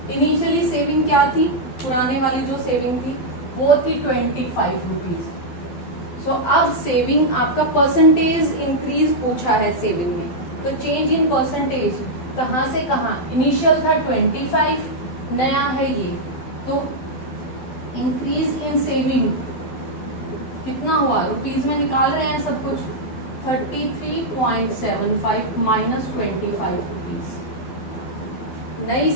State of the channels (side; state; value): right; late; 12 ms